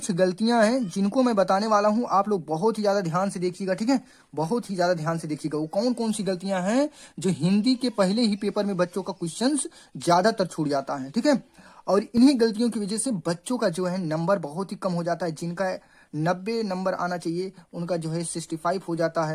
गलतियां हैं जिनको मैं बताने वाला हूं, आप लोग बहुत ही ज्यादा ध्यान से देखिएगा, ठीक है, बहुत ही ज्यादा ध्यान से देखिएगा। वो कौन कौन सी गलतियां हैं जो हिंदी के पहले ही पेपर में बच्चों का क्वेश्चन ज्यादातर छूट जाता है, ठीक है। और इन्हीं गलतियों की वजह से बच्चों का जो है नंबर बहुत ही कम हो जाता है। जिनका 90 नंबर आना चाहिए उनका जो है 65 हो जाता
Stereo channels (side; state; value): both; identical; correlation 1.00